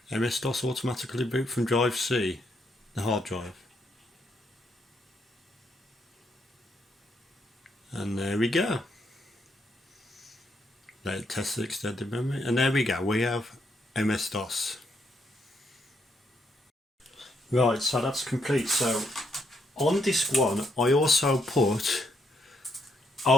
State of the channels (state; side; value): normal; both; correlation 0.76